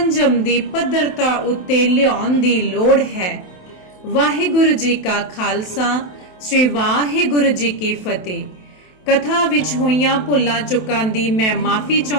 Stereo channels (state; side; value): late; right; 27 ms